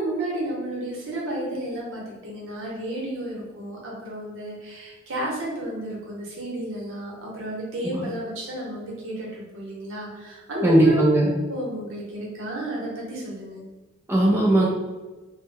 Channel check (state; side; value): normal; both; correlation 0.69